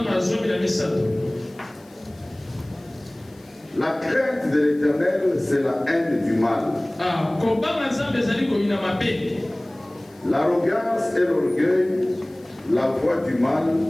La crainte de l'Éternel, c'est la haine du mal. L'arrogance et l'orgueil, la voix du mal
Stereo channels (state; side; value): noise; left; hiss, 29 dB below the sound